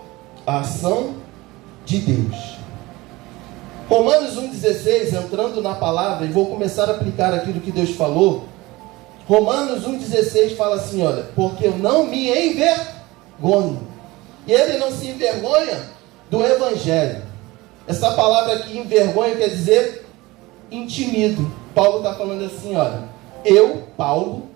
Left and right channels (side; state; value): left; quieter; 20.9 dB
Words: a ação de Deus. Romanos 1,16, entrando na palavra, e vou começar a aplicar aquilo que Deus falou. Romanos 1,16 fala assim, olha, porque eu não me envergonho. E ele não se envergonha do Evangelho. Essa palavra aqui, envergonho, quer dizer intimido. Paulo está falando assim, olha, eu, Paulo,